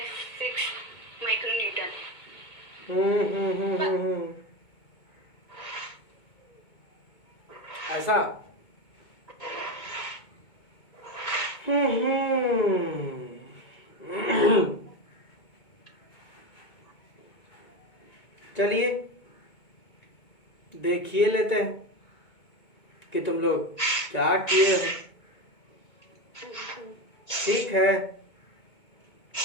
micro Newton. ऐसा? चलिए देखिए लेते हैं कि तुम लोग क्या किए हो। ठीक है,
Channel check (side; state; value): right; late; 2.2 ms